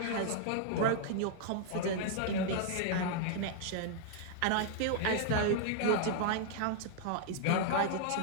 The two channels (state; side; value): different; both; correlation 0.00